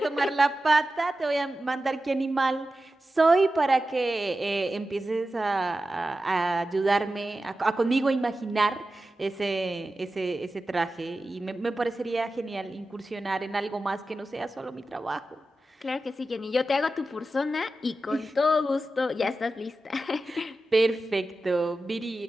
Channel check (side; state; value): both; normal; correlation 0.93